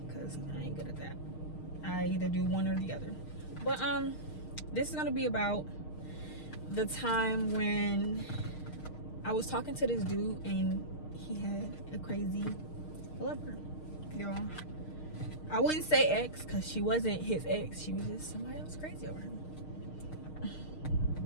because I ain't good at that. I either do one or the other. But this is gonna be about the time when I was talking to this dude and he had a crazy lover, y'all. I wouldn't say ex, because she wasn't his ex. She was just somebody else crazy over him.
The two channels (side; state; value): right; late; 6.5 ms